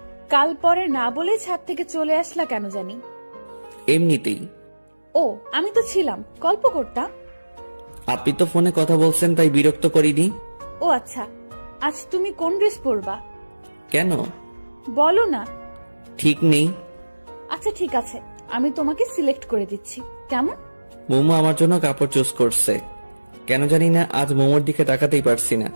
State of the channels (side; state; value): both; inverted; correlation -1.00